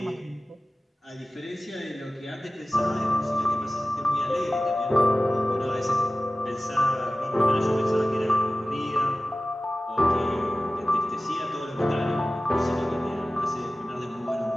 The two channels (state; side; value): normal; both; correlation 0.96